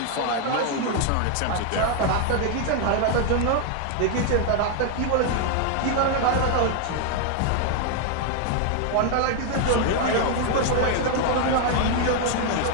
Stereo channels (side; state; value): both; different; correlation 0.00